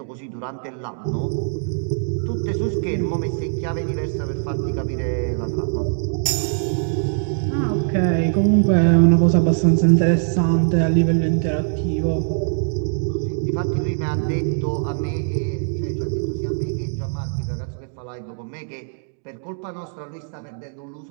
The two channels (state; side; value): silent; left; digital silence